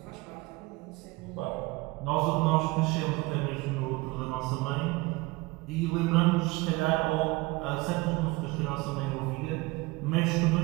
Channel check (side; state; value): left; quieter; 22.6 dB